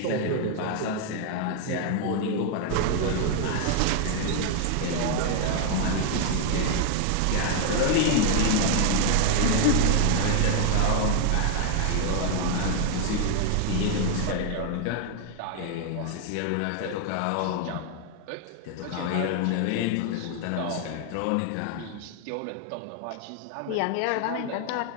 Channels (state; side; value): different; both; correlation 0.00